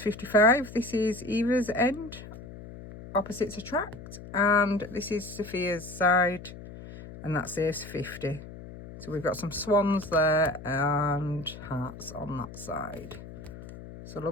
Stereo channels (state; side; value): noise; left; hum, 14 dB below the sound